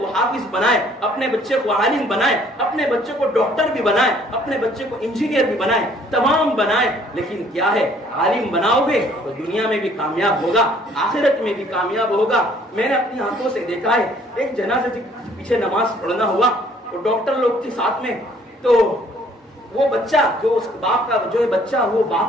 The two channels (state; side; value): normal; both; correlation 0.60